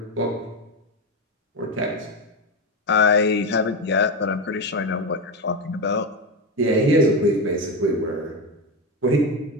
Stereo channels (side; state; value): both; normal; correlation 0.14